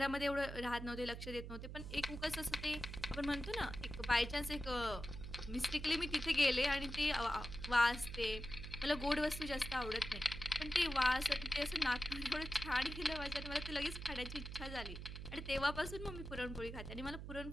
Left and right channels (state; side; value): noise; right; hum, 8 dB below the sound